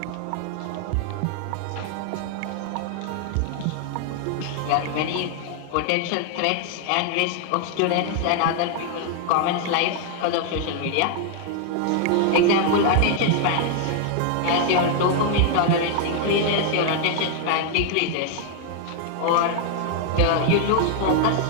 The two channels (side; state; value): both; different; correlation 0.00